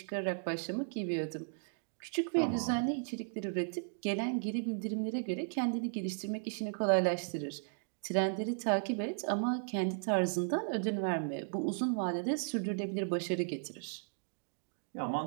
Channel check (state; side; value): silent; left; digital silence